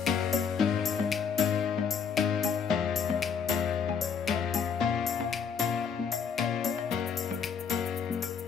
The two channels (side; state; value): right; quieter; 6.6 dB